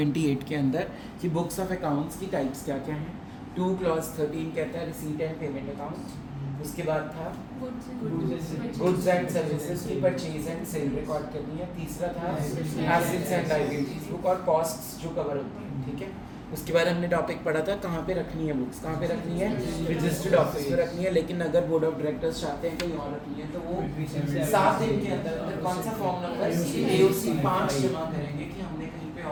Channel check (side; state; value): both; identical; correlation 1.00